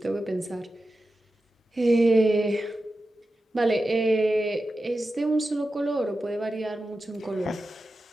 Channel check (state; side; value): normal; both; correlation 0.92